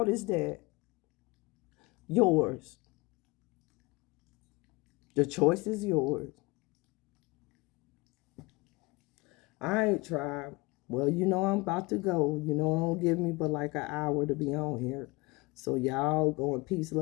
is that? Yours. The choice is yours. I ain't tried. Well, you know I'm about to go. You know, it don't give me but like an hour to be on here. So y'all go in peace,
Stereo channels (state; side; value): quieter; right; 24.7 dB